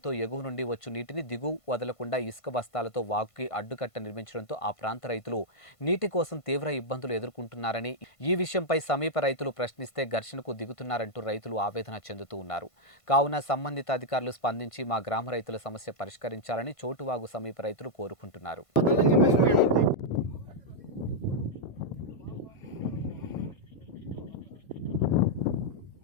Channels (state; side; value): late; right; 1.5 ms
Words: ఎగువ నుండి వచ్చు నీటిని దిగువ వదలకుండా ఇసుక బస్తాలతో వాగుకి అడ్డుకట్ట నిర్మించడంతో ఆ ప్రాంత రైతులు నీటి కోసం తీవ్ర ఇబ్బందులు ఎదుర్కొంటున్నారని, ఈ విషయంపై సమీప రైతులు ప్రశ్నిస్తే ఘర్షణకు దిగుతున్నారంటూ రైతులు ఆవేదన చెందుతూ ఉన్నారు. కావున సంబంధిత అధికారులు స్పందించి మా గ్రామ రైతుల సమస్య పరిష్కరించాలని చోటువాగు సమీప రైతులు కోరుకుంటున్నారు.